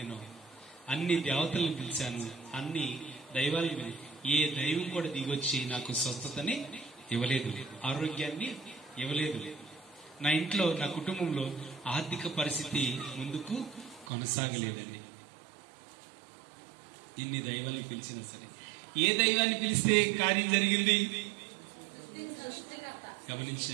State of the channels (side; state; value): left; drops out; at 14.1 s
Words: అన్ని దేవతలను పిలిచాను, అన్ని దైవాలను. ఏ దైవం కూడా దిగొచ్చి నాకు స్వస్థతని ఇవ్వలేదు, ఆరోగ్యాన్ని ఇవ్వలేదు. నా ఇంట్లో, నా కుటుంబంలో ఆర్థిక పరిస్థితి ముందుకు కొనసాగలేదండి. ఇన్ని దైవాన్ని పిలిచినా సరే, ఏ దైవాన్ని పిలిస్తే కార్యం జరిగింది?